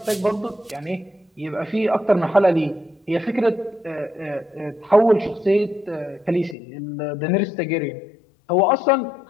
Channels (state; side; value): drops out; right; at 6.6 s